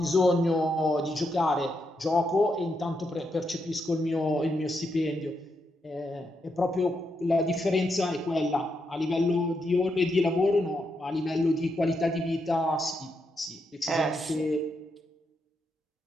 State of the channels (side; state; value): both; normal; correlation 0.82